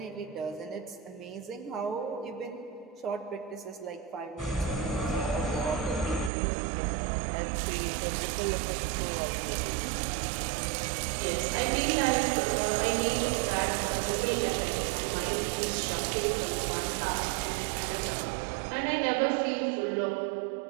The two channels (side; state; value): left; drops out; at 6.3 s